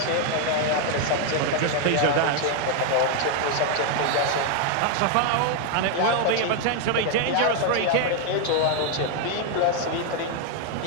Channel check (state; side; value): different; both; correlation 0.00